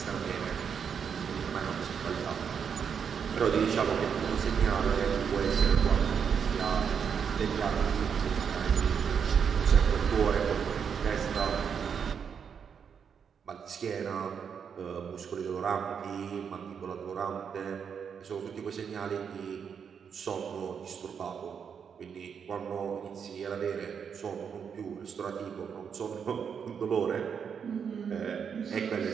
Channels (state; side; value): quieter; left; 7.0 dB